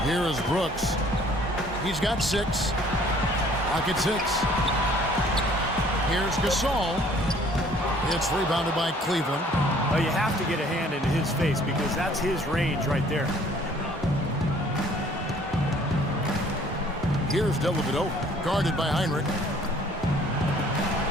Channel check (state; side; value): normal; both; correlation 0.57